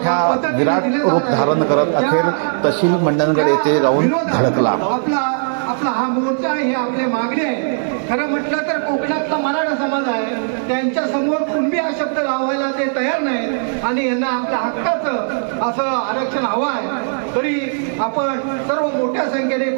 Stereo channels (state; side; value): silent; left; digital silence